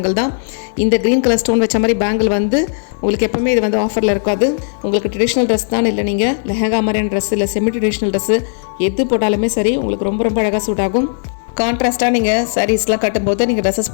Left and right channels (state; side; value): silent; right; digital silence